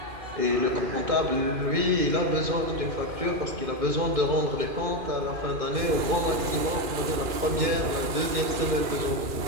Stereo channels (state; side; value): late; left; 2.4 ms